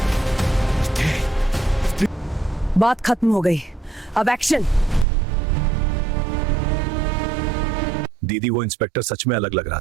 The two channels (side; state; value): left; drops out; at 5.1 s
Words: बात खत्म हो गई, अब एक्शन। दीदी, वो इंस्पेक्टर सच में अलग लग रहा